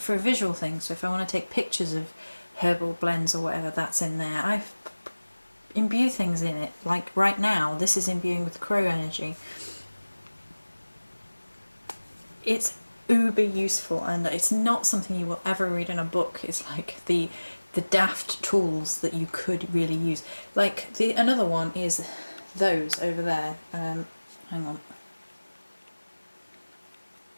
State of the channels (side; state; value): both; inverted; correlation -1.00